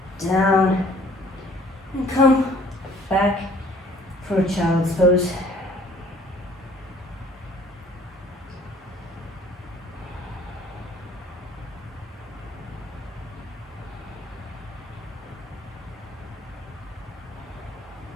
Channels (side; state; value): both; normal; correlation 0.56